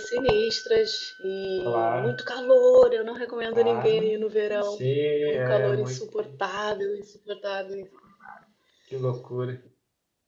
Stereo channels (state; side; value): identical; both; correlation 1.00